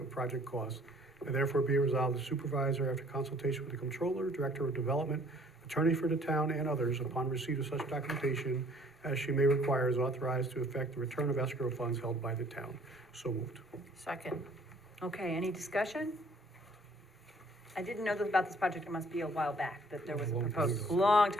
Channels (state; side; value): normal; both; correlation 0.58